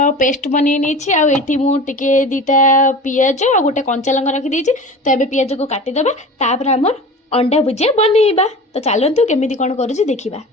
पेस्ट बनै नहीं आ एठी मु टिके दीटा पियाज और गोटे कंचा लंका रखी देछि। तो एबे पियाज को काटिदेबा तापर हमर अंडा भुजिया बनैबा। तो चलतु केमिति कोन करूछि देखिबा।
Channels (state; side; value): normal; both; correlation 0.35